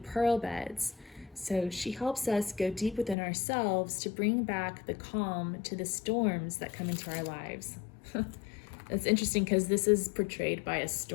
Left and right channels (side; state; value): right; drops out; at 3.2 s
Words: beds. So she helps us go deep within ourselves to bring back the calm to the storms that come into our lives. It's interesting because this is portrayed by a